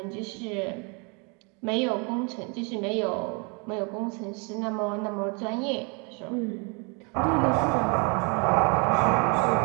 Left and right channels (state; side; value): quieter; left; 33.3 dB